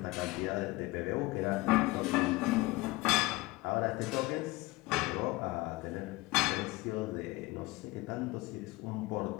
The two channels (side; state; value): right; quieter; 21.1 dB